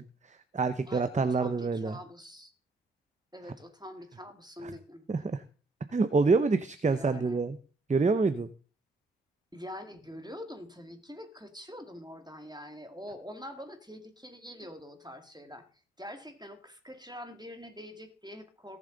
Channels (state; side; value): quieter; left; 3.5 dB